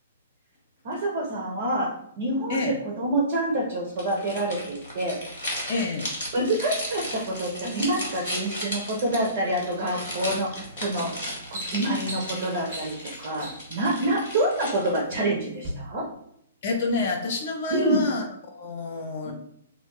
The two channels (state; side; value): inverted; both; correlation -0.39